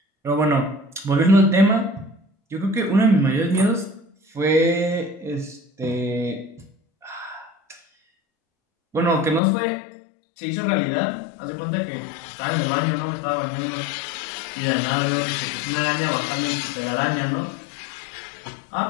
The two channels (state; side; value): drops out; right; at 9.4 s